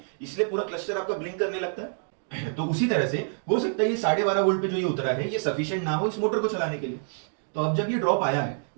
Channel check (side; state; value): left; silent; digital silence